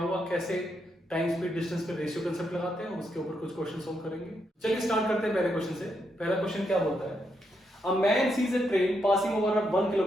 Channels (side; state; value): both; normal; correlation 0.80